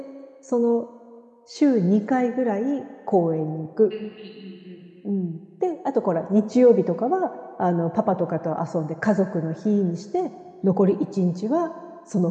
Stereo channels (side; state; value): both; identical; correlation 1.00